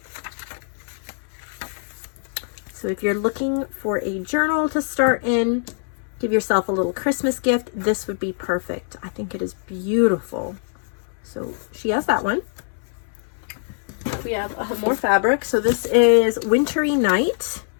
So if you're looking for a journal to start in, give yourself a little Christmas gift, this would be perfect. I think it is beautiful. So she has that one. We have more fabric. So this is Wintry Night,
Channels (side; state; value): right; silent; 63 dB below the other